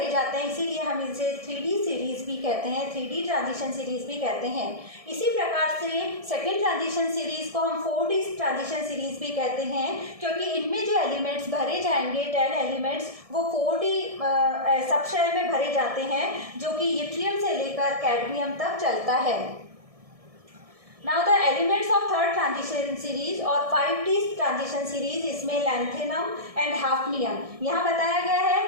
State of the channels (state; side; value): late; left; 1.7 ms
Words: जाते जाते हैं, इसीलिए हम इसे 3D सीरीज भी कहते हैं, 3D ट्रांजिशन सीरीज भी कहते हैं। इसी प्रकार से सेकेंड ट्रांजिशन सीरीज को हम 4D ट्रांजिशन सीरीज भी कहते हैं, क्योंकि इनमें जो एलिमेंट्स भरे जाएंगे 10 एलिमेंट्स वो 4D सबशेल में भरे जाते हैं, जो कि यट्रियम से लेकर कैडमियम तक चलता है। Now the elements of third transition series और 5D ट्रांजिशन सीरीज, इसमें लैंथेनम एंड हाफनियम यहाँ बताया गया है।